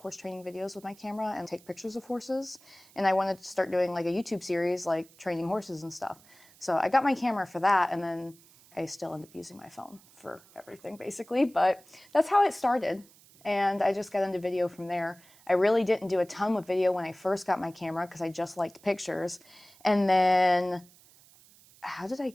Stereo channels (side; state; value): right; noise; hiss, 26 dB below the sound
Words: training videos with my camera and take pictures of horses. And I wanted to start doing like a YouTube series like training horses and stuff. So I got my camera for that, and then I still end up using my phone for everything basically, but that's how it started. And I just got into video from there. I really didn't do a ton with video when I first got my camera because I just liked pictures. And then, how did I